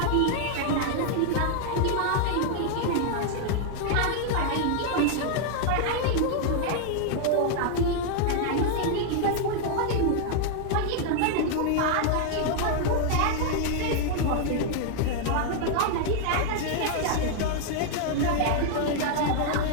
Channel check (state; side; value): different; both; correlation 0.00